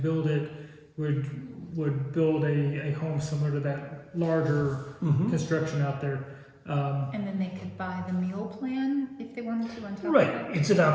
it would build a home similar to that larger construction out there. And then they could buy the meal plan if they wanted to on top right, of that? it's an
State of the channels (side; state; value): both; identical; correlation 1.00